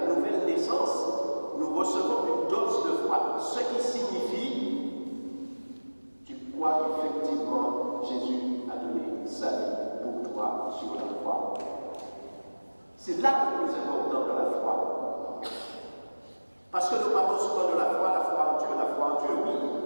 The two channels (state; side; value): inverted; both; correlation -1.00